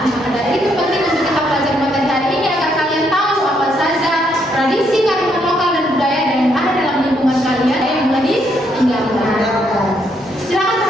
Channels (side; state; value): both; normal; correlation 0.74